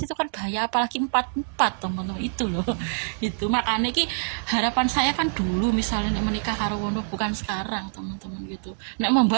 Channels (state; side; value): silent; left; digital silence